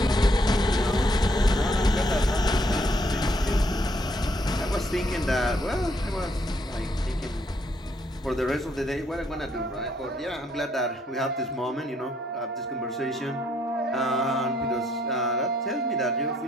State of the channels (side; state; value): both; normal; correlation 0.70